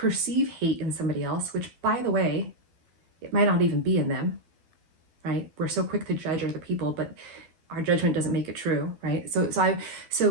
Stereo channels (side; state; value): left; late; 12 ms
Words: hate in somebody else, which, by the way, it might not even be in them, right? We're so quick to judge other people, but our judgment doesn't make it true, right? So